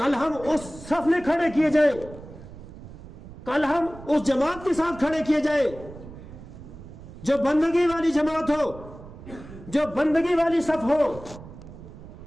ہم اس صف میں کھڑے کیے جائیں، کل ہم اس جماعت کے ساتھ کھڑے کیے جائیں جو بندگی والی جماعت ہو، جو بندگی والی صف ہو.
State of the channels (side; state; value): right; noise; rumble, 16 dB below the sound